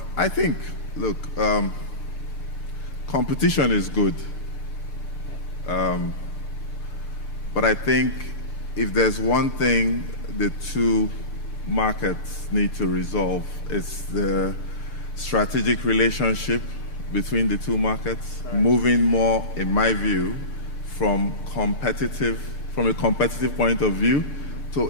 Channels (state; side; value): late; right; 6.7 ms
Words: I think, look, competition is good. But I think if there's one thing the two markets need to resolve, it's the strategic relationship between the two markets, moving more, in my view, from a competitive point of view to